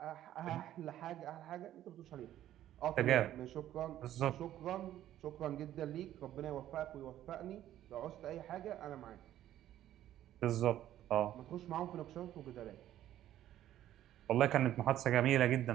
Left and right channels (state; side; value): quieter; left; 12.5 dB